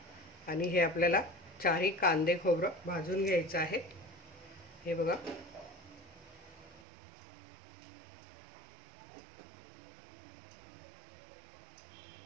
आणि हे आपल्याला 4 कांदे खोबरं भाजून घ्यायचं आहे। हे बघा,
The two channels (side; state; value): left; drops out; at 6.9 s